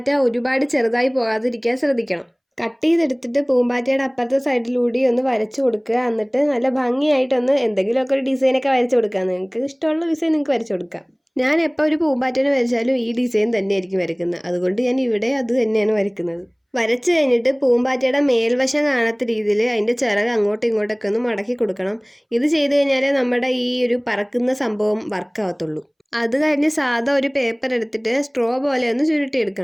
ഒരുപാട് ചെറുതായി പോകാതിരിക്കാൻ ശ്രദ്ധിക്കണം. കട്ട് ചെയ്തെടുത്തിട്ട് പൂമ്പാറ്റയുടെ അപ്പുറത്തെ സൈഡിലൂടെ ഒന്ന് വരച്ചു കൊടുക്കുക. എന്നിട്ട് നല്ല ഭംഗിയായിട്ടൊന്ന് എന്തെങ്കിലുമൊക്കെ ഒരു ഡിസൈനൊക്കെ വരച്ചു കൊടുക്കുക. നിങ്ങൾക്ക് ഇഷ്ടമുള്ള ഡിസൈൻ നിങ്ങൾക്ക് വരച്ചു കൊടുക്കാം. ഞാൻ എപ്പോൾ ഒരു പൂമ്പാറ്റേനെ വരച്ചാലും ഈ ഡിസൈൻ തന്നെയായിരിക്കും വരയ്ക്കുന്നത്. അതുകൊണ്ട് ഞാൻ ഇവിടെ അത് തന്നെയാണ് വരയ്ക്കുന്നത്. വരച്ചു കഴിഞ്ഞിട്ട് പൂമ്പാറ്റയുടെ മേൽവശം കാണാത്ത രീതിയിൽ അതിൻ്റെ ചിറക് അങ്ങോട്ടും ഇങ്ങോട്ടൊക്കെ ഒന്ന് മടക്കി കൊടുക്കണം. ഇത് ചെയ്ത് കഴിഞ്ഞാലേ നമ്മുടെ ഈ ഒരു പറക്കുന്ന സംഭവം വർക്കാവത്തുള്ളൂ. അത് കഴിഞ്ഞ് സാധാ ഒരു പേപ്പർ എടുത്തിട്ട് സ്ട്രോ പോലെ ഒന്ന്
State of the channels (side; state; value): both; identical; correlation 1.00